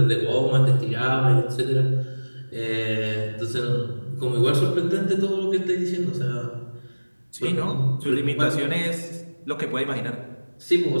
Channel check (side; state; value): both; inverted; correlation -1.00